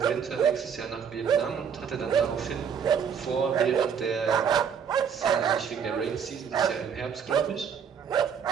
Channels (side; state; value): left; quieter; 7.2 dB